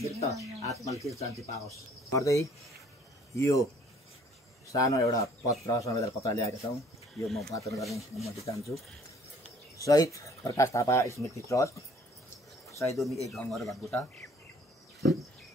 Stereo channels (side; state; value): both; normal; correlation 0.57